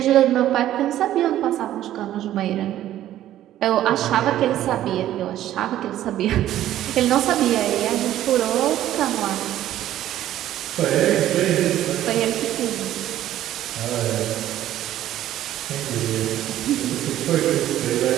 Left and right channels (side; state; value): left; quieter; 12.8 dB